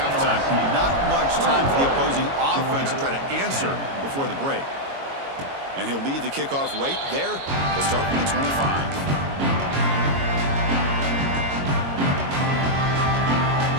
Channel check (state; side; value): late; left; 22 ms